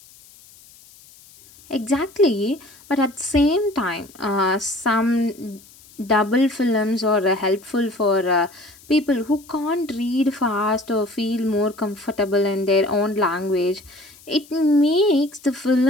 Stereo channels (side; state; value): left; noise; hiss, 24 dB below the sound